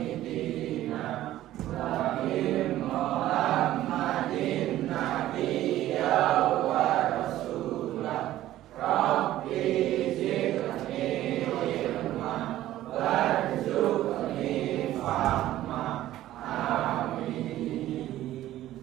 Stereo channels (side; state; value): left; quieter; 14.1 dB